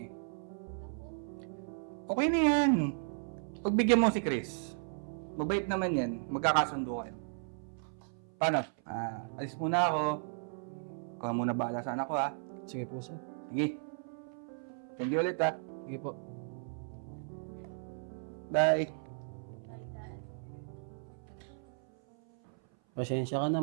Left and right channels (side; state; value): left; silent; 54 dB below the other